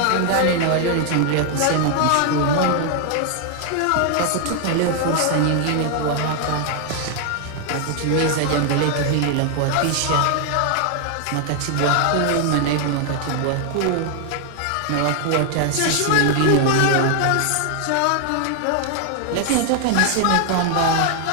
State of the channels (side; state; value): both; different; correlation 0.00